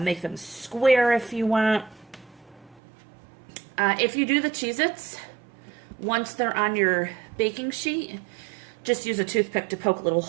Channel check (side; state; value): left; drops out; at 2.8 s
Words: them square if you want. If you do the Cheez-Its, once they're on your baking sheet, just use a toothpick to poke little